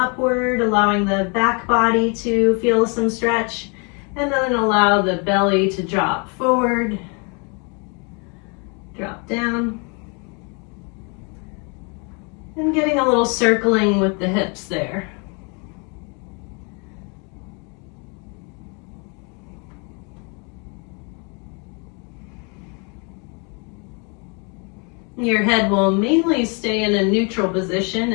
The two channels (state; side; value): quieter; right; 34.1 dB